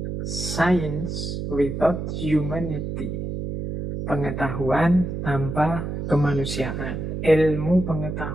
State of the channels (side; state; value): right; noise; hum, 4 dB below the sound